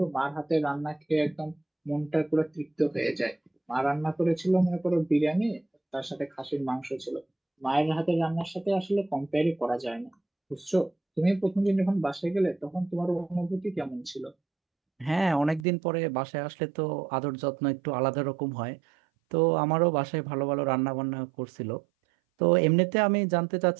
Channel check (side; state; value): left; drops out; at 15.7 s